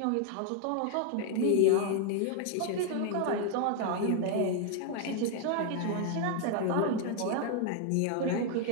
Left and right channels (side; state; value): both; different; correlation 0.00